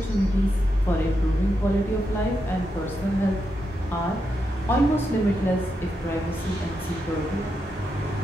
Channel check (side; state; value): both; normal; correlation 0.84